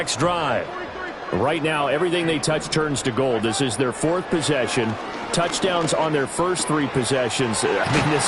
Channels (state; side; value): identical; both; correlation 1.00